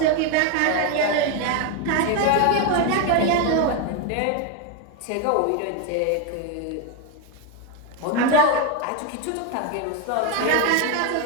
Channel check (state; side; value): different; both; correlation 0.02